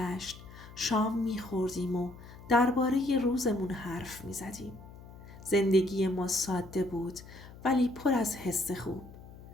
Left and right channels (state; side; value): noise; left; hum, 17 dB below the sound